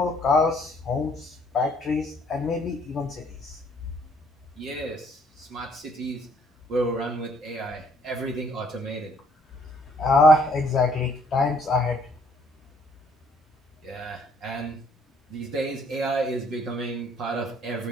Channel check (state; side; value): normal; both; correlation 0.64